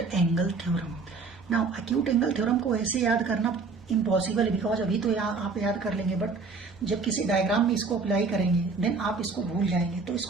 angle theorem. Now acute angle theorem को ऐसे याद करना impossible है because अभी तो आप याद कर लेंगे बट जब किसी डायग्राम में इसको अप्लाई करेंगे देन आप इसको भूल जाएंगे। तो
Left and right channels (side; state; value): left; quieter; 4.4 dB